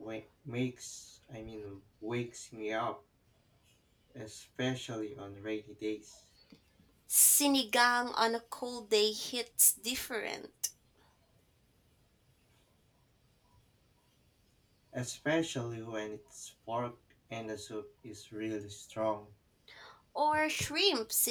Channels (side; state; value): both; identical; correlation 1.00